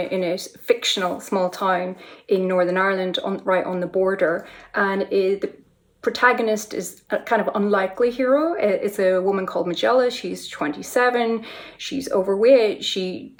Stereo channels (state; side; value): identical; both; correlation 1.00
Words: a fictional small town in Northern Ireland, right on the border, and the protagonist is a kind of unlikely hero. It's a woman called Magella. She's 27. She's overweight. She